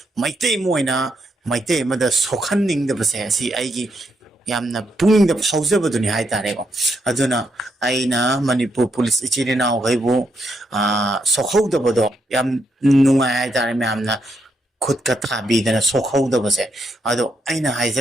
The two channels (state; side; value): normal; both; correlation 0.78